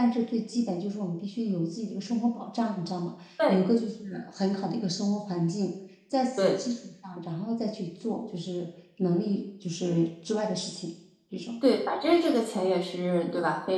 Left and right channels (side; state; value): both; identical; correlation 1.00